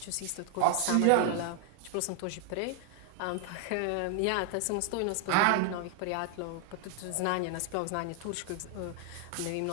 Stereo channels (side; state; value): both; different; correlation 0.00